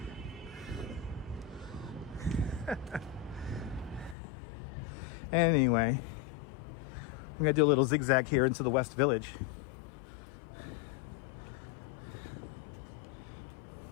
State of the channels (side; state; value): right; drops out; at 4.2 s